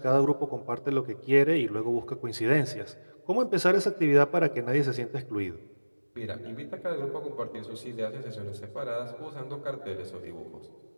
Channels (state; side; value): inverted; both; correlation -1.00